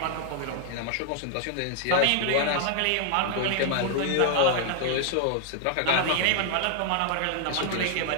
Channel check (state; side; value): different; both; correlation 0.00